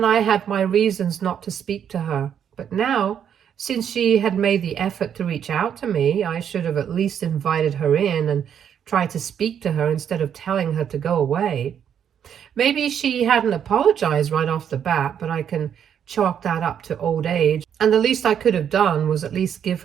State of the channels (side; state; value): left; quieter; 8.6 dB